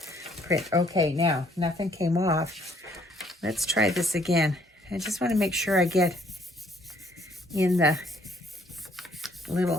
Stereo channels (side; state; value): both; normal; correlation 0.64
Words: print. Okay, now, nothing came off. Let's try this again. I just want to make sure I get in the